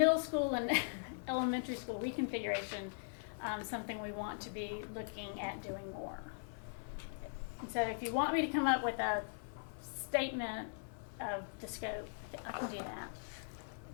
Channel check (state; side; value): silent; right; 51 dB below the other